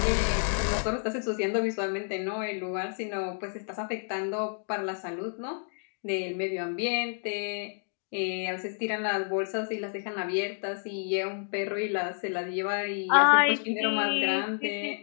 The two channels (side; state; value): right; silent; 58 dB below the other